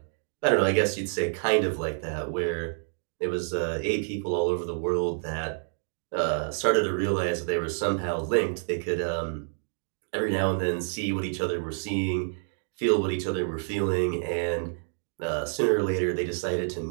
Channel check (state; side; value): silent; left; digital silence